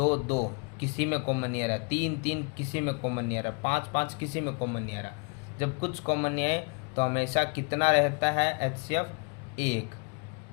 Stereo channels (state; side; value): quieter; right; 34.9 dB